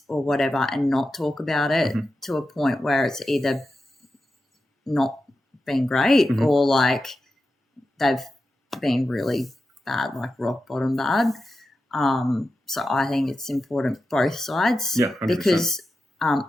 or whatever and not talk about it to a point where it's either not been great or like they've been really bad, like rock bottom bad. So I think it's important both sides. Yeah, 100%. Because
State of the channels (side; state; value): both; normal; correlation 0.91